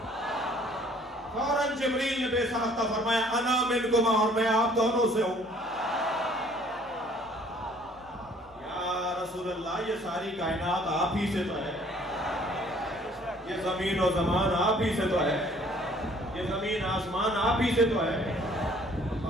فوراً جبریل نے بے ساختہ فرمایا انا منکما، اور میں آپ دونوں سے ہوں. یا رسول اللہ یہ ساری کائنات آپ ہی سے تو ہے، یہ زمین و زمان آپ ہی سے تو ہے، یہ زمین آسمان آپ ہی سے تو ہے.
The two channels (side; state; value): both; normal; correlation 0.58